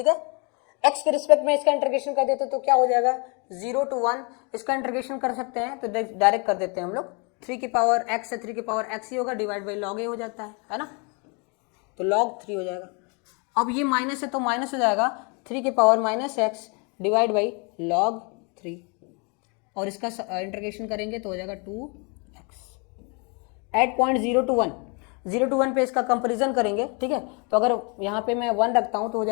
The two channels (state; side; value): quieter; right; 33.4 dB